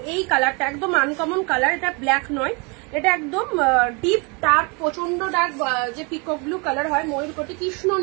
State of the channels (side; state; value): left; quieter; 31.2 dB